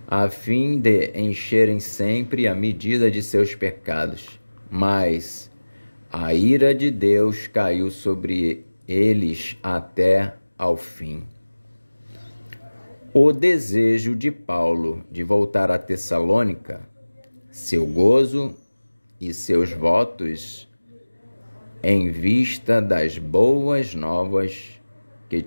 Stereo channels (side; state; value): both; inverted; correlation -1.00